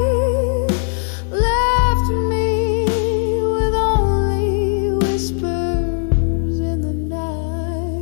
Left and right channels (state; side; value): silent; right; 66 dB below the other